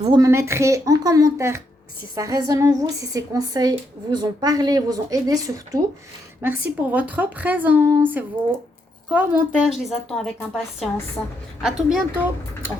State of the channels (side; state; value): both; normal; correlation 0.78